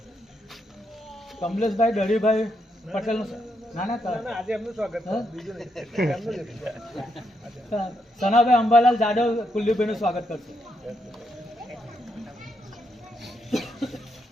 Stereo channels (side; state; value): both; normal; correlation 0.79